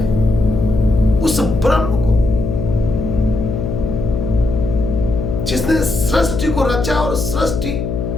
उस ब्रह्म को, जिसने सृष्टि को रचा, और सृष्टि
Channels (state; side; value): noise; left; hum, 3 dB below the sound